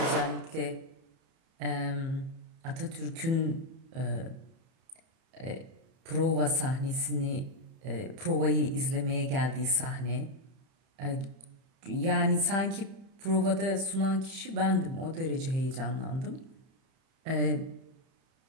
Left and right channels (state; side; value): late; left; 30 ms